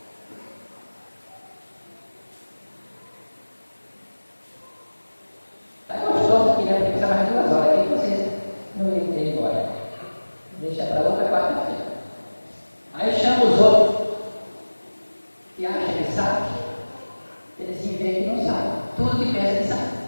Está gostoso aqui, né? Porque precisa mais 2 horas aqui que vocês não iam ter embora. Deixa para outra quarta-feira. Aí chama os outros que acham que sabe. Eles se veem que não sabem. Tudo que pensa que sabe.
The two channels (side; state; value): both; inverted; correlation -1.00